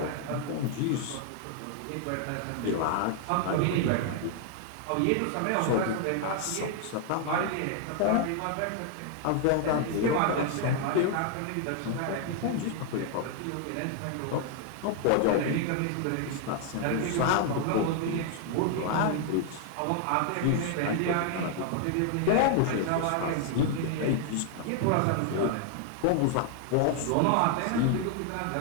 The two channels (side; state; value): both; different; correlation 0.00